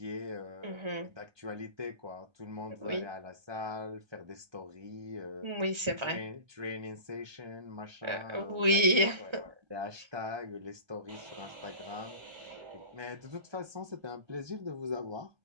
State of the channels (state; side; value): late; left; 1.3 ms